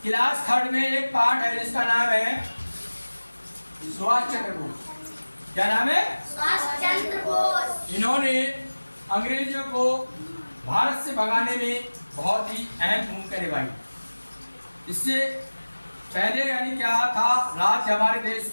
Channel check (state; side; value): inverted; both; correlation -1.00